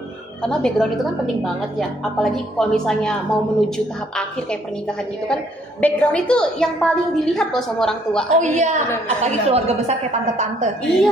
Karena background itu kan penting banget ya. Apalagi kalau misalnya mau menuju tahap akhir kayak pernikahan gitu kan, background itu yang paling dilihat loh sama orang tua. Oh iya, apalagi keluarga besar kayak tante-tante.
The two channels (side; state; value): both; normal; correlation 0.66